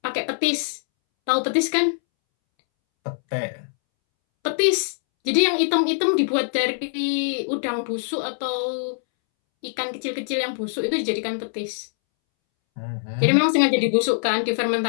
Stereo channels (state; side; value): silent; right; 63 dB below the other